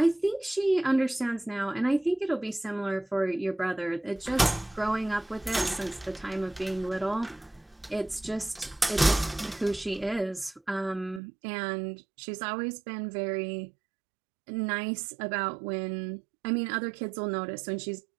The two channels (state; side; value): drops out; left; at 11.2 s